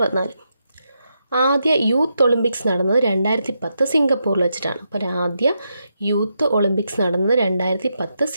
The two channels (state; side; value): inverted; both; correlation -0.83